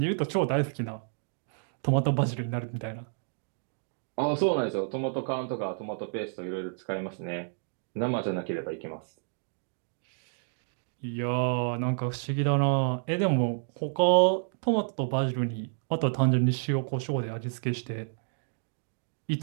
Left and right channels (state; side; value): silent; left; digital silence